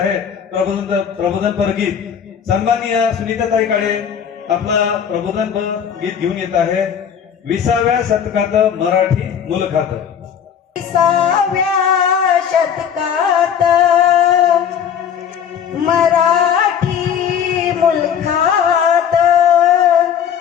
प्रबोधनपर गीत. सन्माननीय सुनीताताई काळे आपला प्रबोधनपर गीत घेऊन येत आहे 20व्या शतकात मराठी मुलखात. 20व्या शतकात मराठी मुलखात,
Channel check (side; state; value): right; quieter; 8.2 dB